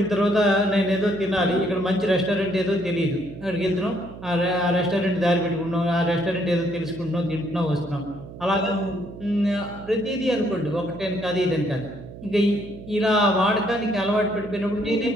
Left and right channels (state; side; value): noise; right; hum, 14 dB below the sound